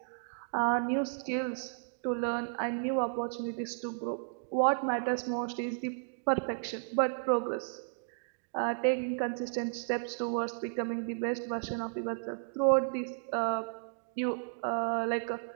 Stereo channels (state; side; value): silent; left; digital silence